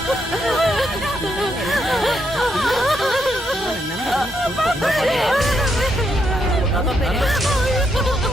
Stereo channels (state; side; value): normal; both; correlation 0.78